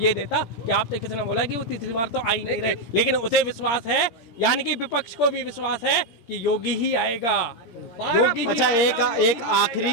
देता कि आपसे किसी ने बोला कि वो तीसरी बार तो आ ही नहीं रहे, लेकिन उसे विश्वास है, यानी कि विपक्ष को भी विश्वास है कि योगी ही आएगा। अच्छा, एक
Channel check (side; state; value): right; late; 17 ms